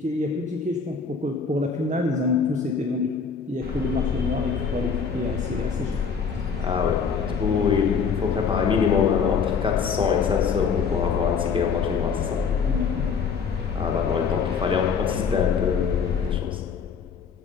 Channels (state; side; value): quieter; right; 5.9 dB